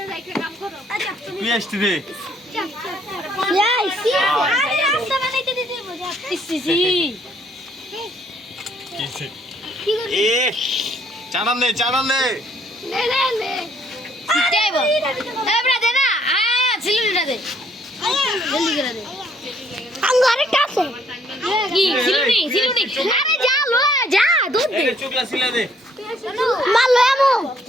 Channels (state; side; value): normal; both; correlation 0.65